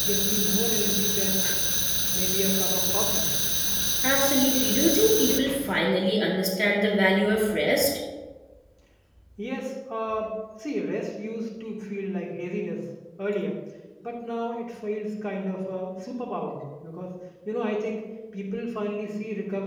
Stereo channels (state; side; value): identical; both; correlation 1.00